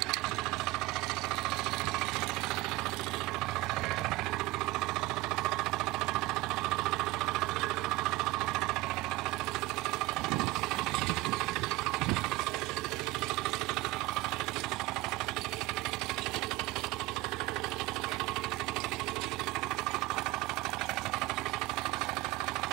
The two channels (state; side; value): quieter; left; 19.5 dB